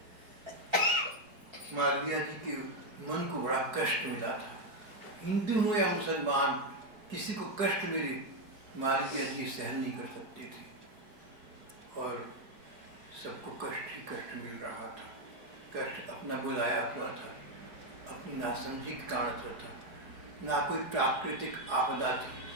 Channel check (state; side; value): late; left; 4.8 ms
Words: मालवीय जी के मन को बड़ा कष्ट मिला था। हिंदू हो या मुसलमान, किसी को कष्ट मिले मालवीय जी सहन नहीं कर सकते थे, और सबको कष्ट ही कष्ट मिल रहा था। कष्ट अपना बुलाया हुआ था, अपनी नासमझी के कारण से था। ना कोई प्राकृतिक आपदा थी,